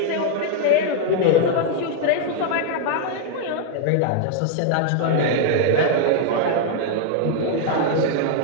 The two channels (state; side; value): different; both; correlation 0.00